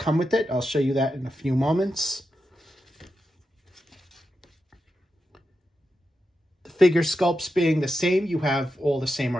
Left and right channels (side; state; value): both; normal; correlation 0.88